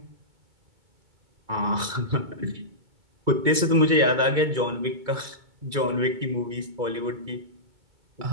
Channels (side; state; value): left; late; 2.2 ms